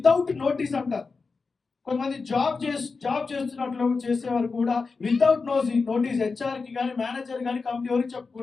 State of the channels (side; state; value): right; quieter; 4.5 dB